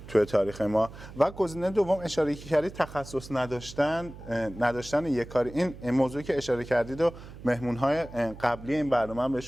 توی تاریخ ما. و گزینه دوم اشاره کردید تخصص نداشتن یک کاری، این موضوعی که اشاره کردید و مهمون‌های قبلی این برنامه هم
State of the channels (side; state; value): right; noise; hum, 15 dB below the sound